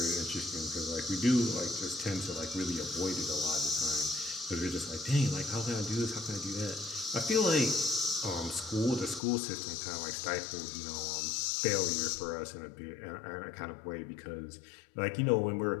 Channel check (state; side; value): drops out; right; at 9.2 s